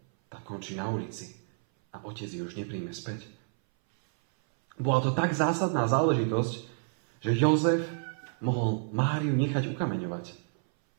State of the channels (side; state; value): left; silent; 58 dB below the other